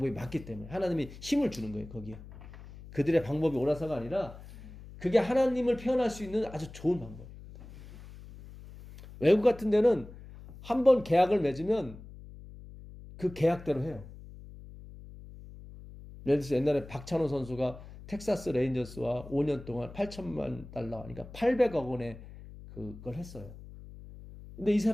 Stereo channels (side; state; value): left; noise; hum, 16 dB below the sound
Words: 맞기 때문에 하나님이 힘을 주는 거예요. 거기에 그들의 방법이 옳아서가 아니라 그게 하나님을 표현할 수 있는 아주 좋은 방법이거든. 외국 같은 데는 한 번 계약을 맺으면 그 계약대로 해요. 예를 들어서 옛날에 박찬호 선수가 텍사스 레인저스와 5년 동안 8천만 달러, 그러니까 800억 원의 그걸 했어요. 근데 이